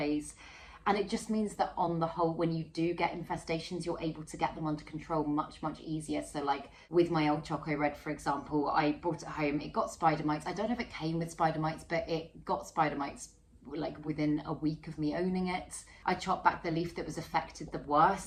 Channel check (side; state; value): both; identical; correlation 1.00